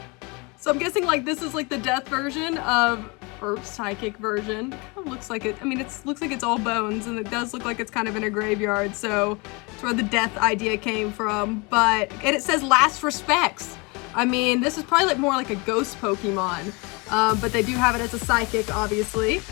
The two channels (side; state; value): right; quieter; 28.4 dB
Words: So I'm guessing like this is like the death version of, or psychic version. It kind of looks like it, I mean, it looks like it's all bones, and it does look like it's kind of in a graveyard, so it's where the death idea came from. But, and it says last respects. I mean, this is probably like more like a ghost Pokemon, but they do have it as a psychic, obviously.